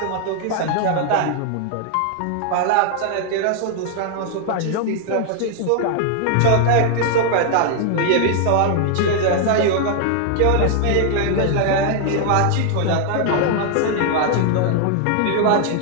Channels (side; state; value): both; different; correlation 0.00